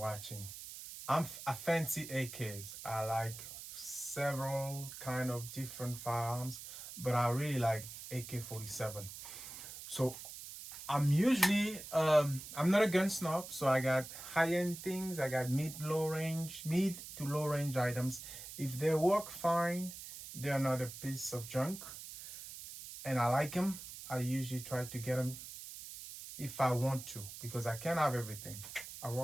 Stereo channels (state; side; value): noise; right; hiss, 11 dB below the sound